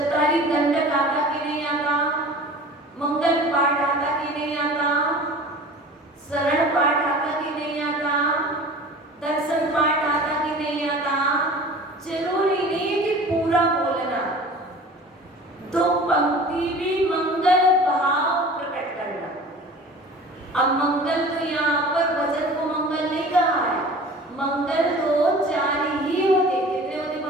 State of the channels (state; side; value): normal; both; correlation 0.41